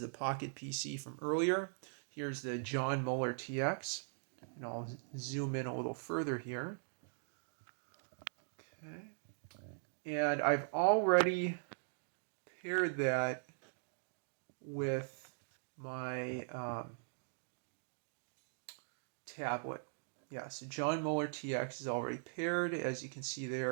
the Pocket PC from earlier. Here's the John Muller TX, and I'll zoom in a little further here. Okay. And I've already paired that with my tablet. Yeah, so John Muller TX is already paired, as you can see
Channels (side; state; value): left; silent; digital silence